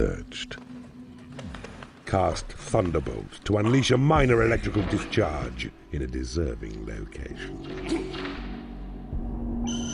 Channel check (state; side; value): identical; both; correlation 1.00